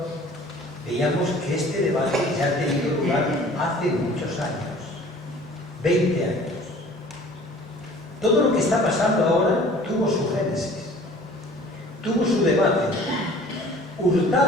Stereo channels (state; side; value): normal; both; correlation 0.48